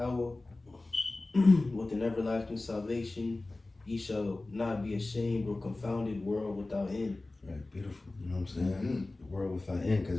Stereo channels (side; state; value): right; quieter; 3.0 dB